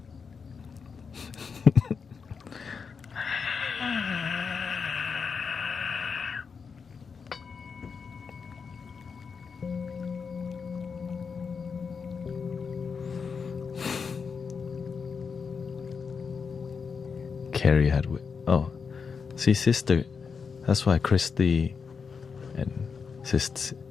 Carrie had see, sister, that's why Christy and Sister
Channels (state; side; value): quieter; right; 5.7 dB